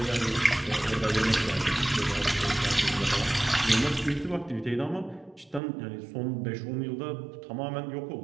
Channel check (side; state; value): left; drops out; at 5.6 s